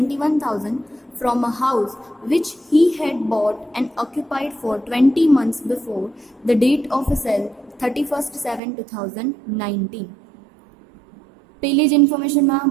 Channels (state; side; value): drops out; left; at 8.6 s